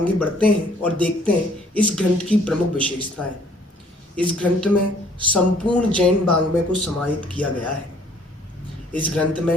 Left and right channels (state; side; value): normal; both; correlation 0.60